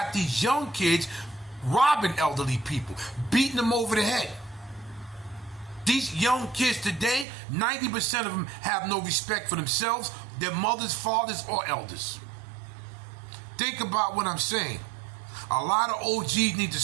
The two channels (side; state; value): left; drops out; at 7.2 s